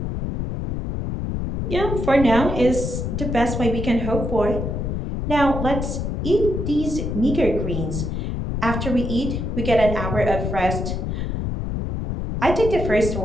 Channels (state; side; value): noise; left; rumble, 3 dB below the sound